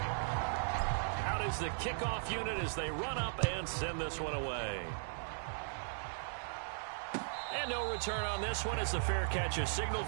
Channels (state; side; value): silent; left; digital silence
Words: Out is the kickoff unit as they run up and send this one away. And no return on this one as the fair catch is signaled